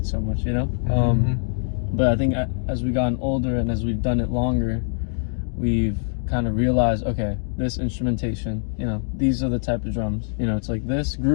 so much. You know, but I think as we've gotten older and as we've done it longer, we've kind of realized, okay, this instrumentation, you know, these are the type of drums. You know, it's like this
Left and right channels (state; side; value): silent; right; digital silence